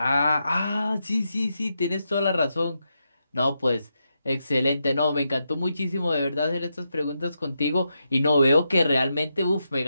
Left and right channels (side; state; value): both; inverted; correlation -0.85